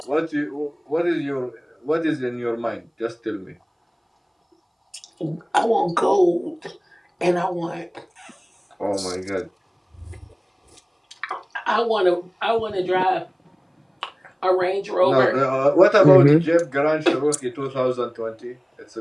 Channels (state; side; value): identical; both; correlation 1.00